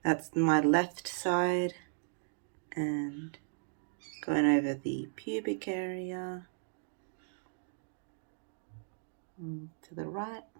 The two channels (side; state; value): left; silent; digital silence